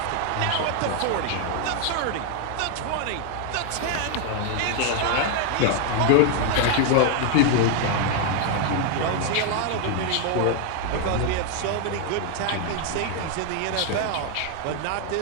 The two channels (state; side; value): different; both; correlation 0.01